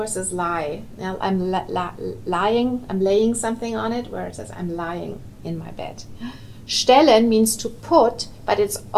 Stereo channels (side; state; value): both; identical; correlation 1.00